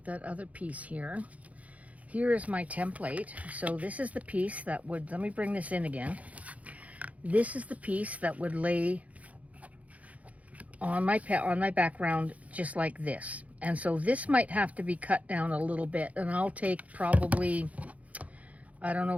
that other piece here. Here is my template. So this is the piece that would, let me bring this in again. This is the piece that would lay on my background just like this. And so this might have to be cut down a little bit, and I'll take probably, I don't know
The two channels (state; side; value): late; left; 0.068 ms